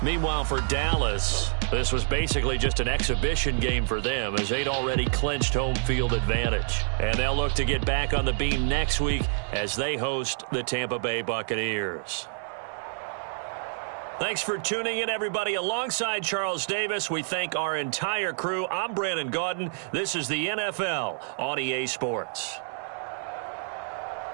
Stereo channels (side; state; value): left; silent; 60 dB below the other